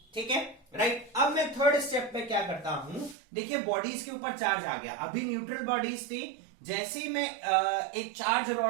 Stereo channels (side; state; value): left; drops out; at 3.2 s